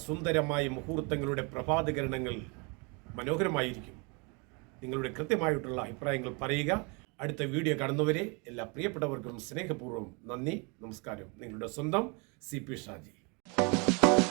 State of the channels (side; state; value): left; quieter; 31.7 dB